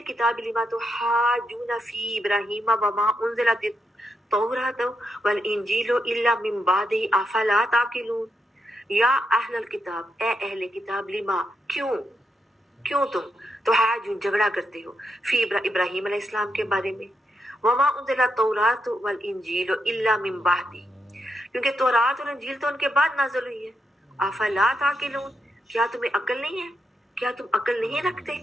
لما تحاجون فی ابراہیم وما انزلت التوراۃ والانجیل الا من بعد افلا تعقلون. یا اہل الکتاب، اے اہل کتاب، لما کیوں تم تحاجون جھگڑا کرتے ہو فی ابراہیم علیہ السلام کے بارے میں، وما انزلت التوراۃ والانجیل الا من بعد، کیونکہ تورات اور انجیل تو ان کے بعد نازل ہوئی ہے. افلا تعقلون، کیا تمہیں عقل نہیں ہے؟ کیا تم عقل نہیں رکھتے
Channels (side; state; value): both; normal; correlation 0.83